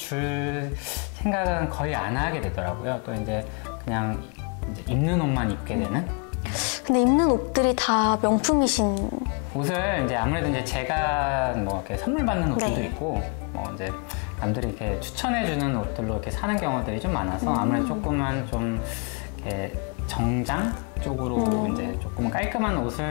생각은 거의 안 하게 되더라고요. 또 이제 그냥 이제 입는 옷만 입게 되는. 근데 입는 옷들이 다 명품이신. 옷을 이제 아무래도 이제 제가 뭐 이렇게 선물 받는 옷들도 네. 있고 뭐 이제 남들이 이렇게 추천해주는 옷들로 이렇게 사는 경우들이 좀 많아서 아무래도 조금은 좀 이렇게 정장 쪽으로 이제 조금 깔끔한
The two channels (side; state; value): right; quieter; 36.9 dB